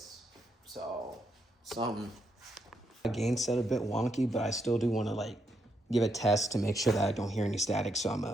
So, gain set a bit wonky, but I still do want to give a test to make sure that I don't hear any static. So I'm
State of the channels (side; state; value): both; normal; correlation 0.79